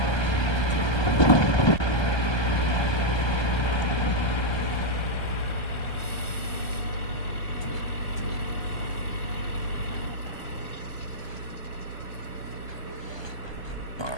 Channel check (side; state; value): right; late; 1.2 ms